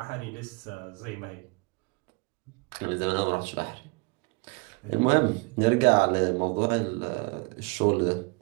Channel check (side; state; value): left; quieter; 28.9 dB